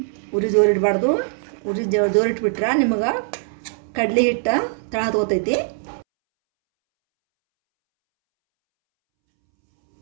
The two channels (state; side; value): silent; left; 65 dB below the other